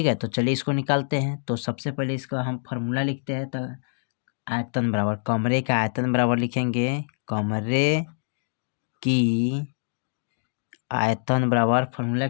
है, तो चलिए इसको निकालते हैं। तो सबसे पहले इसका हम फार्मूला लिखते हैं। तो आयतन बराबर कमरे का आयतन बराबर लिखेंगे कमरे की आयतन बराबर, फार्मूला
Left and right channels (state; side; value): silent; right; digital silence